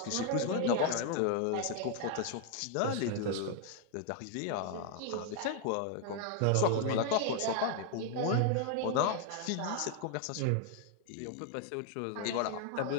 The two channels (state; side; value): different; both; correlation 0.00